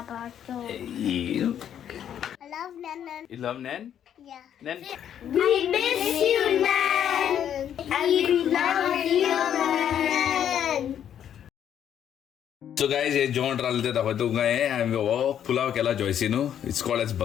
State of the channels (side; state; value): right; quieter; 9.6 dB